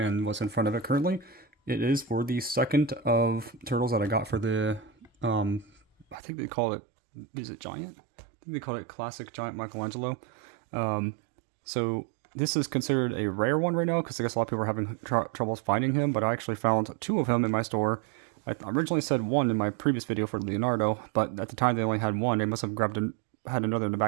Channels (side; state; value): left; drops out; at 6.2 s